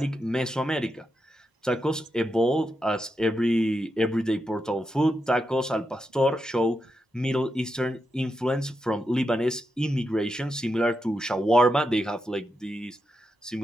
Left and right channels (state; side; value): normal; both; correlation 0.86